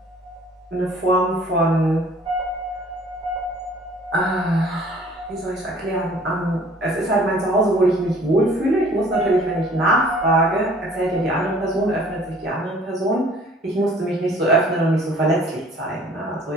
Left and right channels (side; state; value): both; normal; correlation 0.53